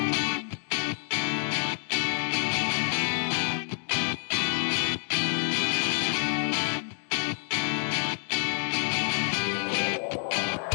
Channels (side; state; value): right; silent; 59 dB below the other